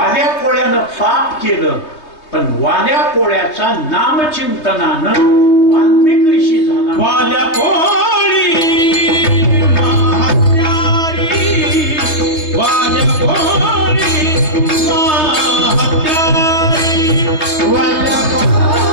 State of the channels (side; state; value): right; late; 3.2 ms